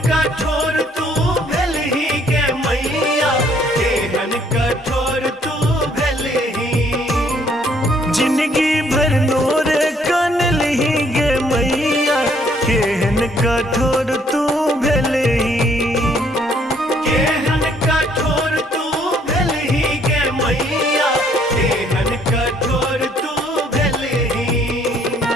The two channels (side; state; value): both; normal; correlation 0.65